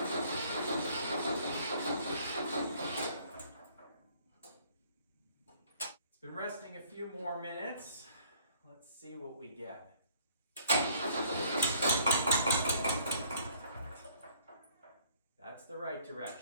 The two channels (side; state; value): both; inverted; correlation -0.59